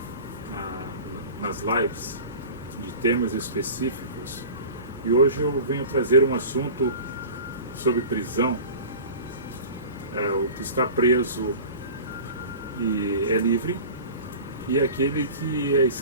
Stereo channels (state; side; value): inverted; both; correlation -0.36